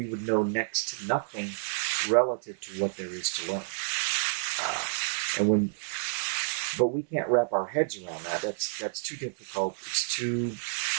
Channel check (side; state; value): left; silent; 58 dB below the other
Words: would know next to nothing relative to what there is to learn. But we can't wrap our heads around that. That's too difficult.